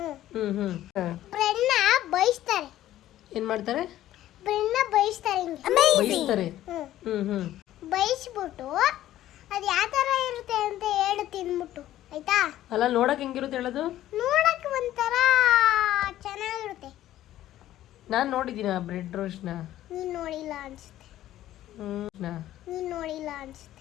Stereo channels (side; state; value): right; quieter; 13.5 dB